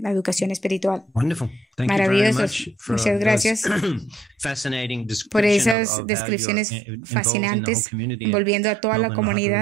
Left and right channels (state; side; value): drops out; left; at 5.8 s